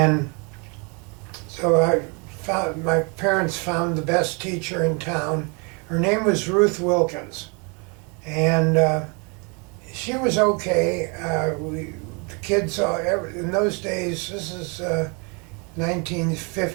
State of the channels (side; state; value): left; quieter; 33.0 dB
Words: so my parents found the best teacher in town. Her name was Ruth Wilkins, and she was okay. The kids in those days, this is